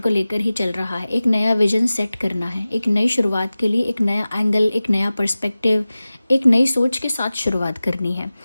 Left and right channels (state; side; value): inverted; both; correlation -0.97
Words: लेकर ही चल रहा है। एक नया विजन सेट करना है, एक नई शुरुआत के लिए एक नया एंगल, एक नया पर्सपेक्टिव, एक नई सोच के साथ शुरुआत करनी है।